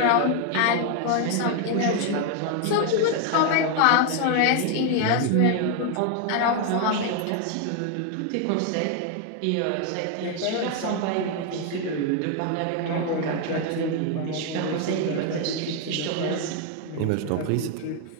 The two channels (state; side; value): different; both; correlation 0.01